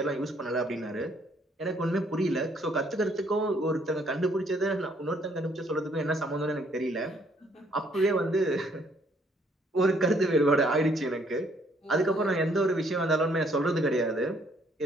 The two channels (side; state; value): both; normal; correlation 0.66